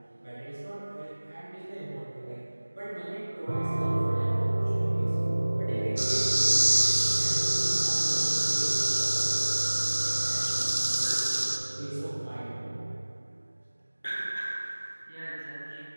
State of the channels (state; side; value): inverted; both; correlation -1.00